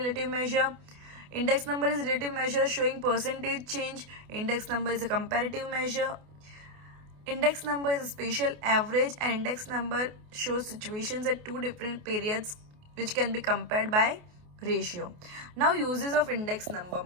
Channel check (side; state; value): left; late; 28 ms